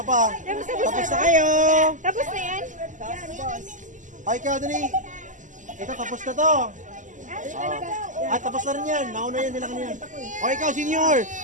pa. Tapos na kayo. Tapos na yan? Ay, ikaw, dali. Ito, tapos na to. Tapos na rin yan. Nauna yan nila kanina. O, ikaw, senior.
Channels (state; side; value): late; left; 0.37 ms